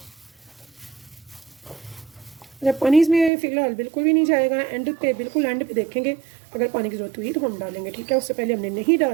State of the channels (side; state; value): left; drops out; at 3.3 s